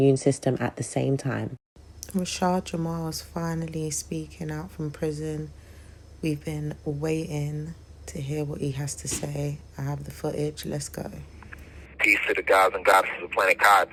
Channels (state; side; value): identical; both; correlation 1.00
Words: system at the same time. Rashad Jamal is finally speaking out from prison. We've been waiting to hear what he has to say. I have the footage. Let's go. Peace to the gods and goddesses of planet Kai.